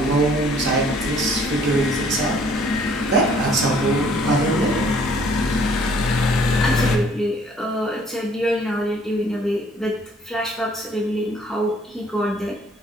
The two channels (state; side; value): normal; both; correlation 0.59